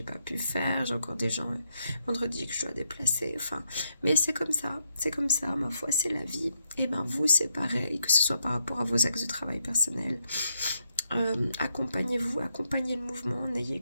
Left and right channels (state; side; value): inverted; both; correlation -0.80